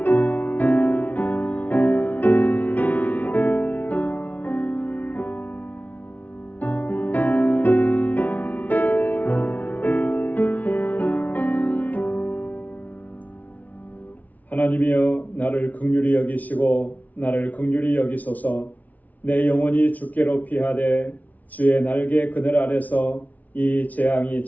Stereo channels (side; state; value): right; late; 0.074 ms